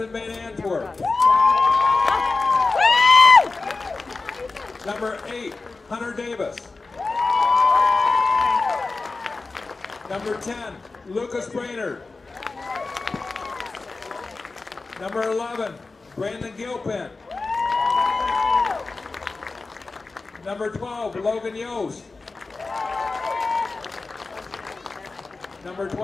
Van Antwerp. Number 8, Hunter Davis. Number 10, Lucas Brainerd. Number 11, Brandon Gilpin. Number 12, Logan Yost. Number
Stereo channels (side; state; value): right; quieter; 3.8 dB